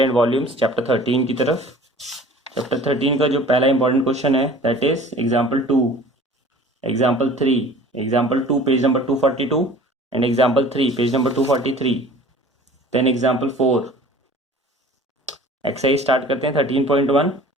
and volumes, chapter 13 की तरफ। Chapter 13 का जो पहला इंपॉर्टेंट क्वेश्चन है that is example 2, example 3, example 2 page number 242 and example 3 page number 243, then example 4। Exercise start करते हैं 13.1।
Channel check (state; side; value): normal; both; correlation 0.46